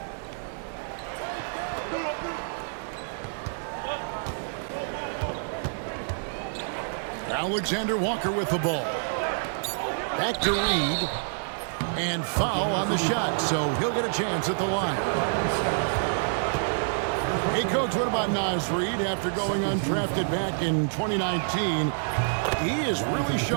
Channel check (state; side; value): silent; left; digital silence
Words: Alexander Walker with the ball. Back to Reed. And foul on the shot, so he'll get a chance at the line. Hey, Coach, what about Naz Reid after going undrafted back in 2019? He is really